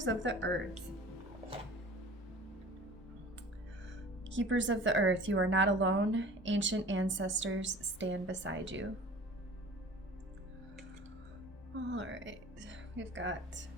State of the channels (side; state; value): both; normal; correlation 0.42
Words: of the Earth. Keepers of the Earth, you are not alone. Ancient ancestors stand beside you. All right, we've got,